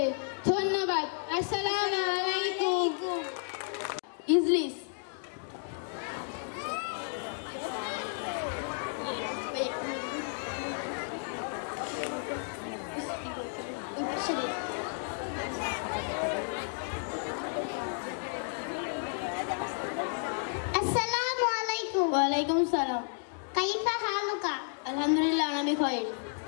ধন্যবাদ। আসসালামু আলাইকুম। ইজলিস। আসসালামু আলাইকুম। ওয়ালাইকুম সালাম। কাইফা হালুকা? আলহামদুলিল্লাহ, আমি খাই।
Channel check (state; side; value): silent; right; 56 dB below the other